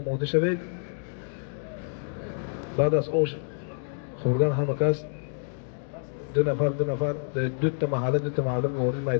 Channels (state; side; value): silent; right; digital silence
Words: شوید. بعد از آش خوردن همه کس دو نفر دو تا محله وارد